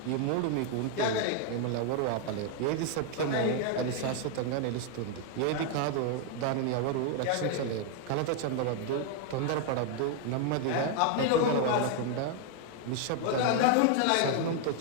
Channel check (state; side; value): different; both; correlation 0.00